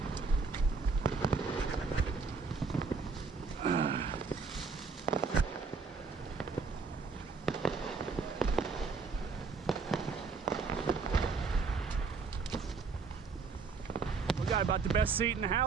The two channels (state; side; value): quieter; left; 4.7 dB